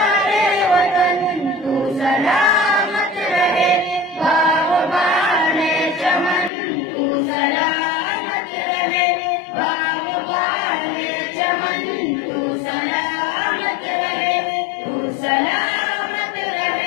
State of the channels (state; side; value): drops out; right; at 6.5 s